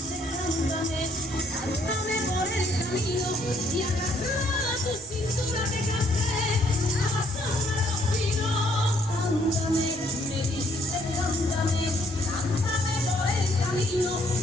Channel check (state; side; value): normal; both; correlation 0.67